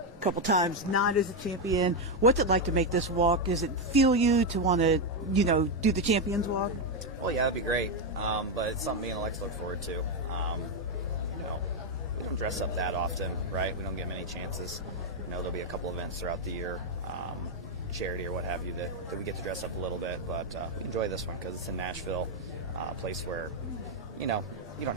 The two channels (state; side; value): normal; both; correlation 0.04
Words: couple times not as a champion. What's it like to make this walk? Does it feel you to want to, do the champion's walk? Well, yeah, that'd be great, but it's something me and Alex look forward to. We don't dress up that often, right? We don't get many chances. There'll be a couple events throughout the year, charity or what have you, that we get to dress up a little bit, but we enjoy this one because it's in Nashville, a place where, you don't